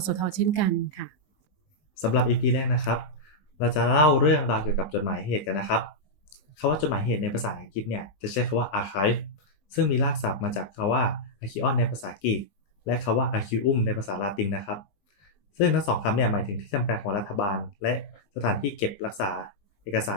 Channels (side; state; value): right; late; 20 ms